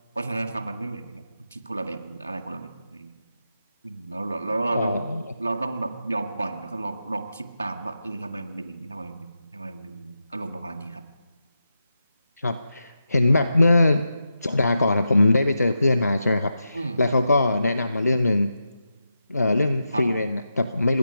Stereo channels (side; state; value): both; inverted; correlation -0.88